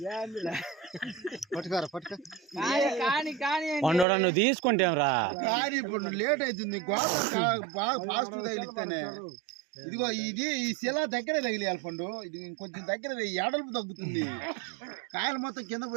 పండు నువ్వు తీసుకుంటేరా కానీ ఇప్పుడు లేట్ అవుతుంది బాగా ఫాస్ట్ తగిలిస్తేనే ఇదిగో ఇది ఈ శిల దగ్గరే తగిలియాలి పండు ఇది ఇంకొంచెం దగ్గర ఎడల్పు తగ్గుతుంది కాయలు మొత్తం కింద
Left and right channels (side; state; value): left; drops out; at 4.0 s